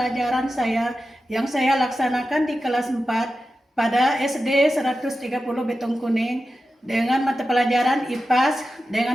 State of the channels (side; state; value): both; normal; correlation 0.92